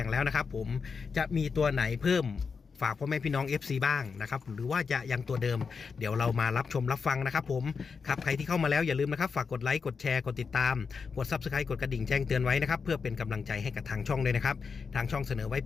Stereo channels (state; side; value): quieter; right; 5.4 dB